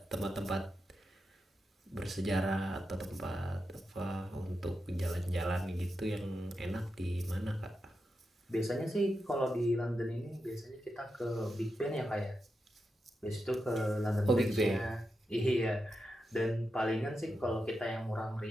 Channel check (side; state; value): both; normal; correlation 0.88